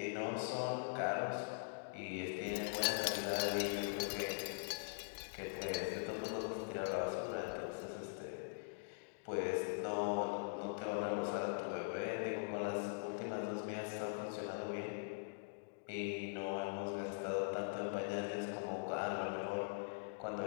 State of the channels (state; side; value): silent; right; digital silence